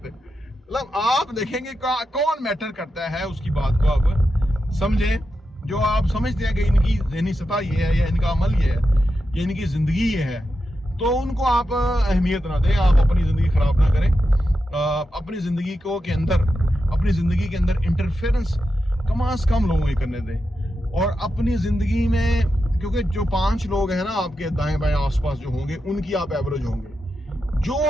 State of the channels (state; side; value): normal; both; correlation 0.88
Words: मतलब आप देखेंगे कौन मैटर करता है, उसकी बात को आप समझें। जो आप समझते हैं कि इनकी ज़हनी सतह ये है, या इनका अमल ये है, या इनकी ज़िंदगी ये है, तो उनको आप अहमियत ना दें। आप अपनी ज़िंदगी ख़राब ना करें। अपनी ज़िंदगी के अंदर इंटरफेरेंस कम से कम लोगों को करने दें। और अपनी ज़िंदगी में, क्योंकि जो 5 लोग हैं ना आपके दाएं बाएं आसपास जो होंगे, उनकी आप एवरेज होंगे।